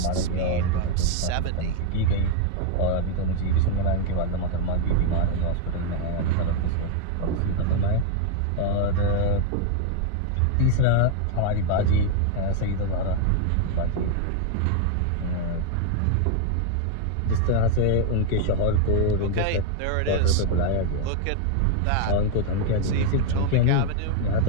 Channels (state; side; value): different; both; correlation 0.00